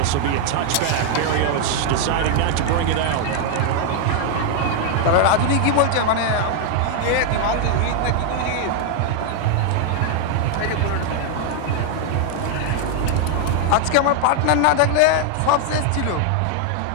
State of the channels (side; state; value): both; different; correlation 0.00